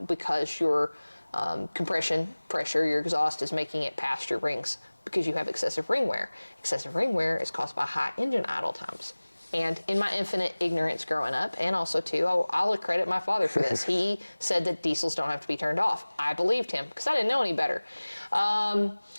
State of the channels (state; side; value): inverted; both; correlation -1.00